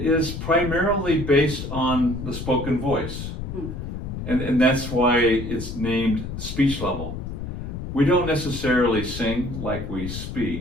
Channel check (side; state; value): left; noise; rumble, 7 dB below the sound